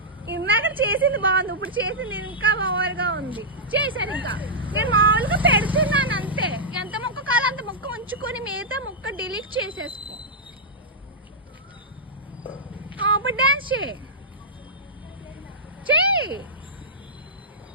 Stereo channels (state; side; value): normal; both; correlation -0.11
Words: ఇందాక చేసింది బాగుంది, ఇప్పుడు చేసింది ఇంకా ఓవర్గా ఉంది. చేశాను ఇంకా నేను మామూలుగా పెడుతున్నాను అంతే. ఎంత మొక్క కావాలో అంత మొక్క ఉంచుకొని మిగతా మొక్క డిలీట్ చేసేసుకో. ఇప్పుడు డాన్స్ చేయి.